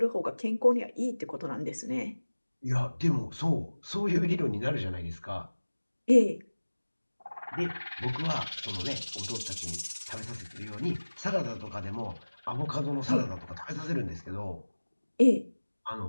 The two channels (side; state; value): both; inverted; correlation -1.00